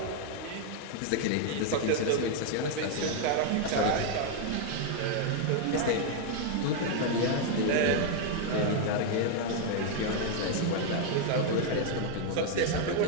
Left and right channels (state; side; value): different; both; correlation 0.00